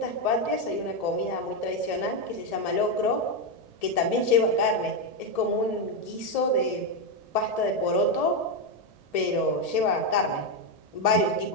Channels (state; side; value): late; right; 1.7 ms